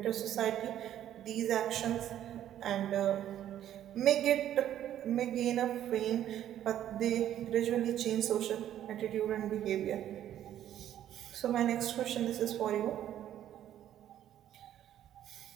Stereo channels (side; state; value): left; quieter; 11.3 dB